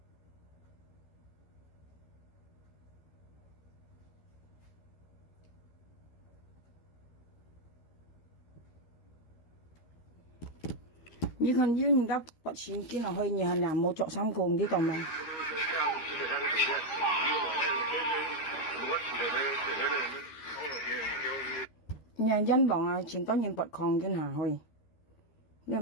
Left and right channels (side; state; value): right; late; 13 ms